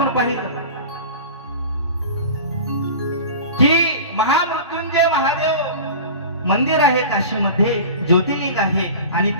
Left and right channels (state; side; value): inverted; both; correlation -0.35